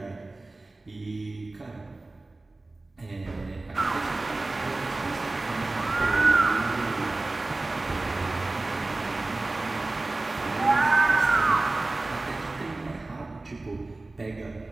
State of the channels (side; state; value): left; quieter; 3.1 dB